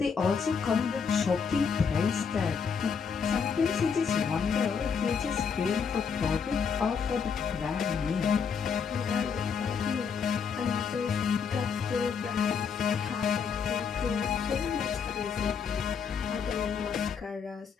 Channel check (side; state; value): right; quieter; 6.2 dB